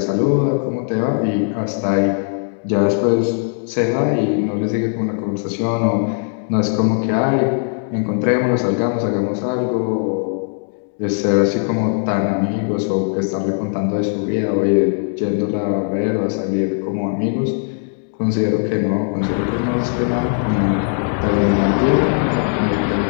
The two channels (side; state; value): right; silent; 57 dB below the other